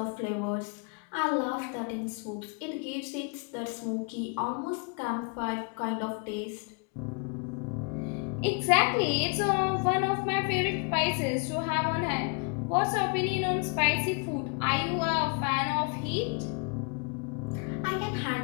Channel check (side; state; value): right; quieter; 36.4 dB